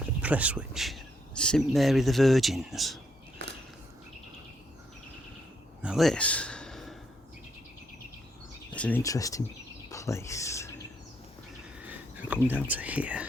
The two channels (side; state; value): both; normal; correlation 0.74